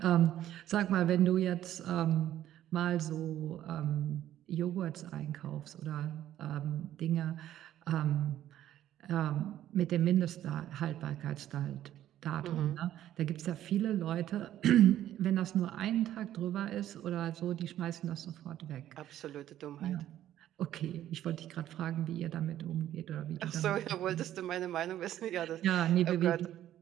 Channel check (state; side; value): quieter; left; 12.3 dB